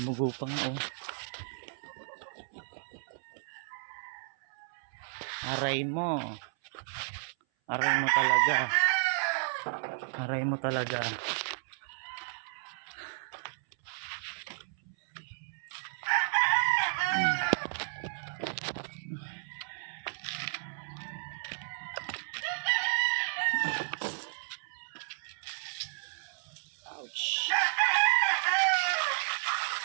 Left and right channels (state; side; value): silent; left; 56 dB below the other